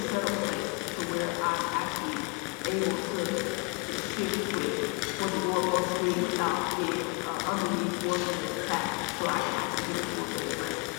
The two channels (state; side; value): quieter; right; 31.2 dB